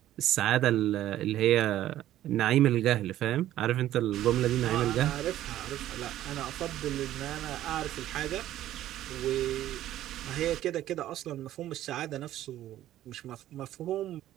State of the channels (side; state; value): left; quieter; 13.2 dB